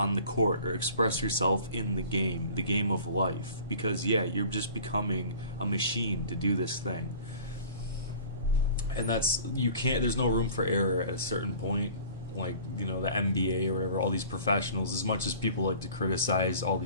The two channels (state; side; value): inverted; both; correlation -0.45